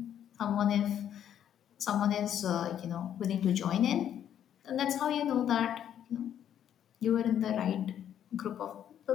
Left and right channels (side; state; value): right; quieter; 9.9 dB